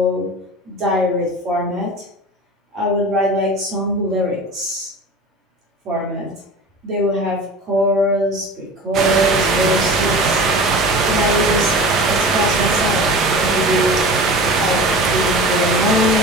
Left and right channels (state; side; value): normal; both; correlation 0.35